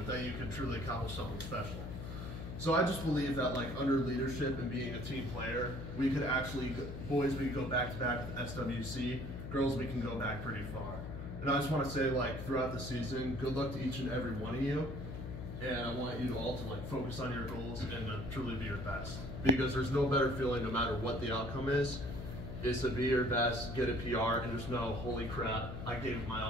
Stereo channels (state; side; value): noise; left; hum, 7 dB below the sound